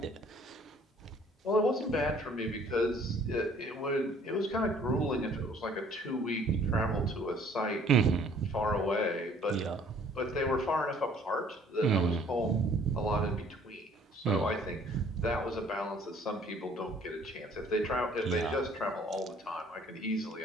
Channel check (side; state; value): both; normal; correlation 0.57